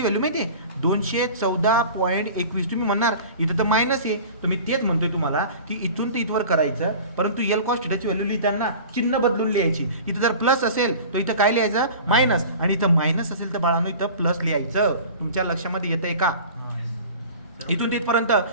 व्हॅल्यू माहिती आहे? 214.21. तुम्ही म्हणणार इथं तर मायनस आहे, तर मी तेच म्हणतोय तुम्हाला की इथून ते इथवर करायचं, परंतु यल कॉस थिटाची व्हॅल्यू लिहिताना चिन्ह बदलून लिहायची. इथं जर प्लस असेल तर इथं काय लिहायचं? मायनस, आणि इथं मायनस असेल तर बाळांनो इथं प्लस लिहायचं. तुमच्या लक्षामध्ये येतंय का? इथून तिथपर्यंत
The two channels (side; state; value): both; inverted; correlation -0.39